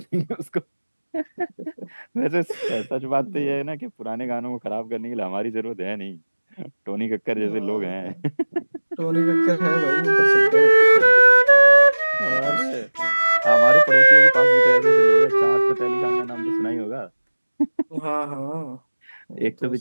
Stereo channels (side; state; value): both; inverted; correlation -1.00